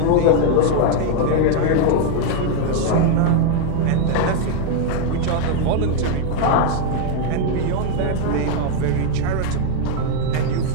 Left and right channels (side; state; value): both; different; correlation 0.00